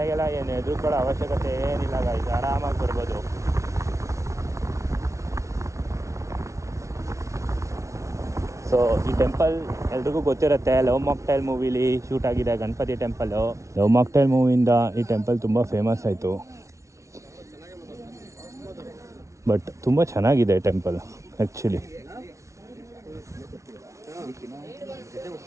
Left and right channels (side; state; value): left; late; 0.14 ms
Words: ಏನು ಹೆದರ್ಕೊಳ್ಳೋ ಅವಶ್ಯಕತೆ ಏನಿಲ್ಲ ಗಾಯ್ಸ್, ಆರಾಮಾಗಿ ಬರ್ಬೋದು. ಸೊ ಈ ಟೆಂಪಲ್ ಎಲ್ರಿಗೂ ಗೊತ್ತಿರುತ್ತೆ, ಲವ್ ಮಾಕ್ಟೈಲ್ ಮೂವಿಲಿ ಶೂಟ್ ಆಗಿದೆ ಗಣಪತಿ ಟೆಂಪಲ್ಲು. ಲವ್ ಮಾಕ್ಟೈಲ್ ಮೂವಿಯಿಂದ ಈ ಟೆಂಪಲ್ ತುಂಬ ಫೇಮಸ್ ಆಯಿತು. ಬಟ್ ತುಂಬ ಚೆನ್ನಾಗಿದೆ ಟೆಂಪಲ್ ಆ್ಯಕ್ಚುಲಿ.